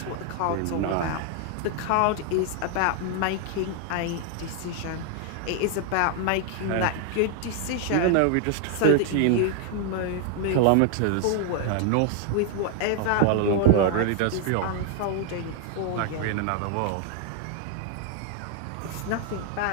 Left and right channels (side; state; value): both; different; correlation 0.00